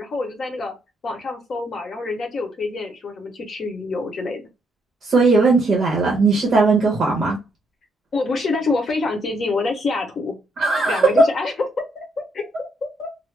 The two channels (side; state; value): both; normal; correlation 0.74